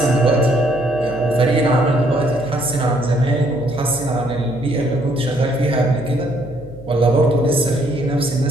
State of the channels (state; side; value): noise; left; hum, 16 dB below the sound